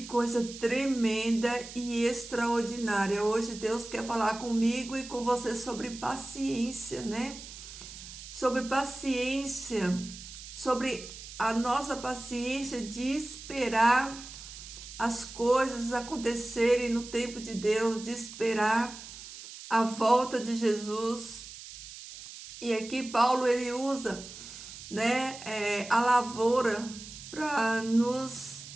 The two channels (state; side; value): noise; right; hiss, 13 dB below the sound